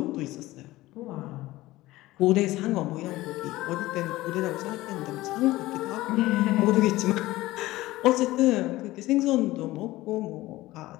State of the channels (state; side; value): quieter; right; 17.8 dB